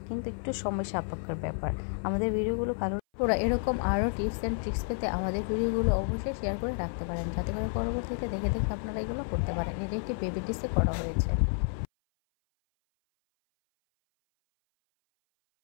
কিন্তু একটু সময় সাপেক্ষের ব্যাপার। আমাদের ভিডিওগুলো ভালো ওরা এরকম আরও টিপস অ্যান্ড ট্রিক্স পেতে আমাদের ভিডিওগুলো অবশ্যই শেয়ার করে রাখতে পারেন, যাতে করে পরবর্তীতে দেখে দেখে আপনারা এগুলো করতে পারেন। এটা একটি বেবি ড্রেসে করা হয়েছে।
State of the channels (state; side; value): silent; right; 57 dB below the other